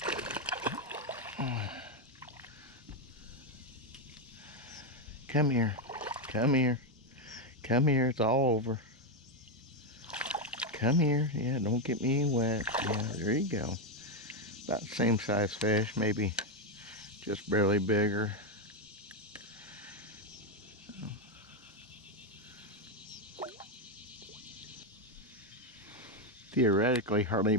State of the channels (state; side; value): normal; both; correlation 0.06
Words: Come here. Come here. Come here. It's all over. Come here. Yeah, don't get me wet. Yeah, there you go. About the same size fish, maybe just barely bigger. Theoretically, hardly